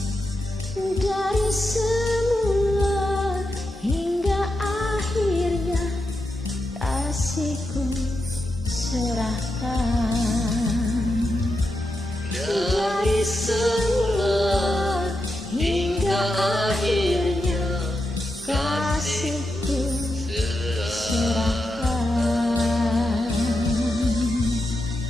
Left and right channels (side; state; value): both; normal; correlation 0.87